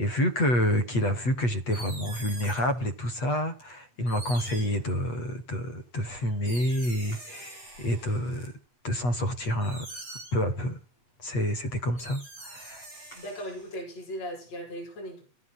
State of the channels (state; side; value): late; right; 8.2 ms